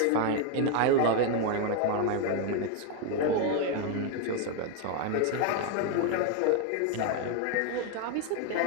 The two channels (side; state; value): both; different; correlation 0.01